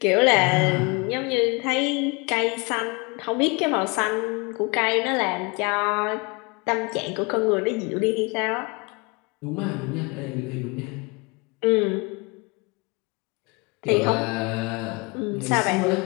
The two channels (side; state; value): right; quieter; 29.1 dB